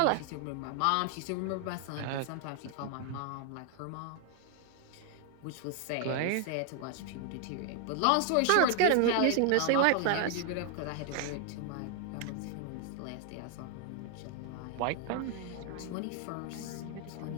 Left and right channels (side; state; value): both; different; correlation 0.00